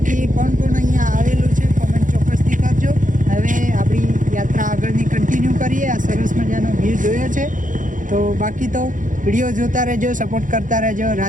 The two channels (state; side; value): late; left; 0.38 ms